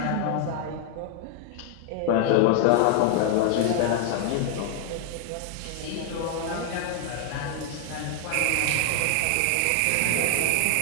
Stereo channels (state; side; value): different; both; correlation 0.00